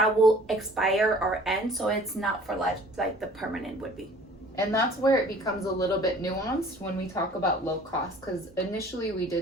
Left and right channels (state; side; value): normal; both; correlation 0.50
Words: will expire or end. So it's not for life like the permanent would be. And that's where it becomes a little bit nuanced when we talk about low cost, because initially we